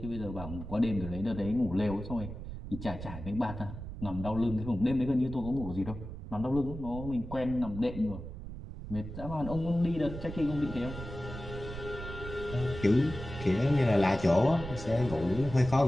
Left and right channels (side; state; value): right; noise; rumble, 10 dB below the sound